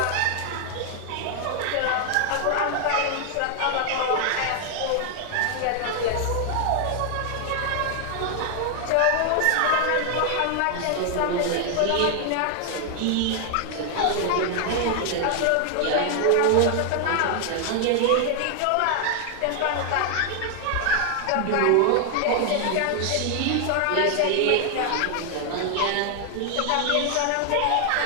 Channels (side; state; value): both; different; correlation 0.00